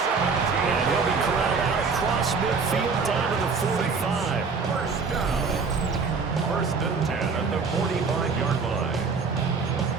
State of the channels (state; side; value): quieter; left; 4.9 dB